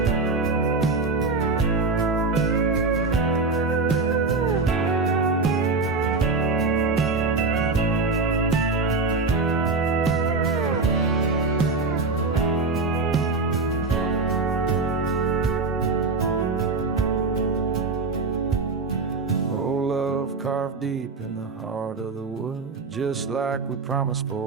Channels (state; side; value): quieter; left; 3.8 dB